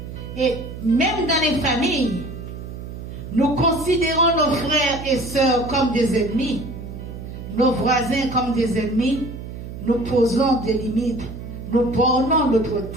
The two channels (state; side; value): noise; right; hum, 10 dB below the sound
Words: Et même dans les familles, nous considérons nos frères et sœurs comme des ennemis, nos voisins comme des ennemis, nous posons des limites, nous bornons notre